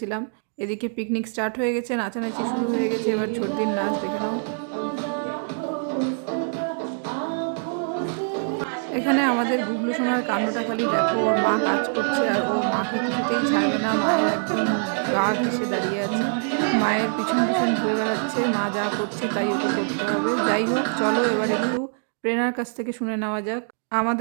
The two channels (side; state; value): left; silent; 61 dB below the other